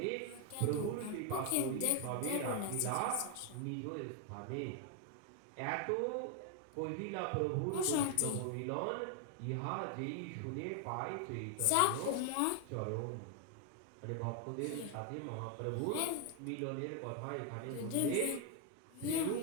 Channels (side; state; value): both; different; correlation 0.01